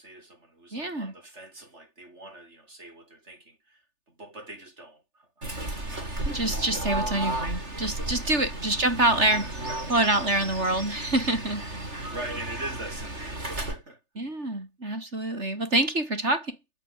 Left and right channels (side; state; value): left; late; 3.3 ms